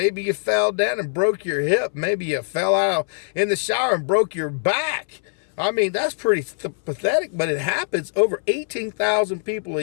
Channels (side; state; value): right; silent; 61 dB below the other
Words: you fell down and broke your hip, maybe you fell out in the shower and broke your back. I mean, that's pretty pathetic, but it happens. Over 18,000 people a